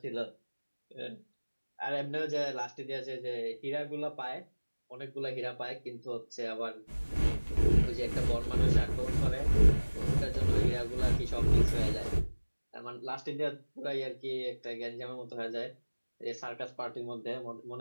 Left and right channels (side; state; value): both; inverted; correlation -1.00